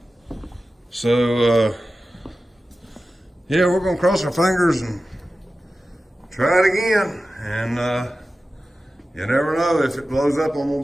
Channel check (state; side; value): normal; both; correlation 0.94